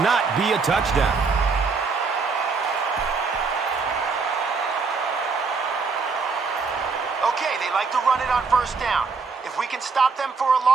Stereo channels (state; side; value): quieter; left; 4.7 dB